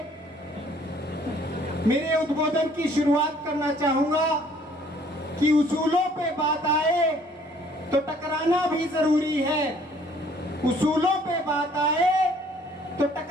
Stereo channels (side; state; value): both; normal; correlation 0.59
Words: मेरे उद्बोधन की शुरुआत करना चाहूंगा कि उसूलों पे बात आए तो टकराना भी जरूरी है, उसूलों पे बात आए तो